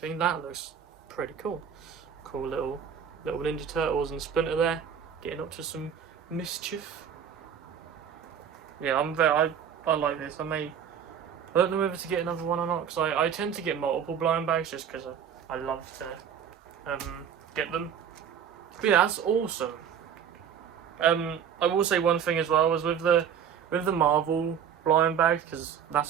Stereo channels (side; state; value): left; quieter; 8.1 dB